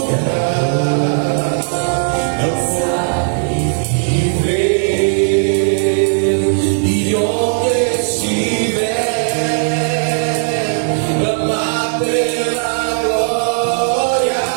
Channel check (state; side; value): silent; left; 69 dB below the other